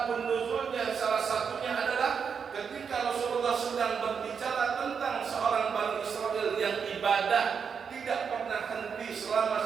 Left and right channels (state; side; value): quieter; left; 6.5 dB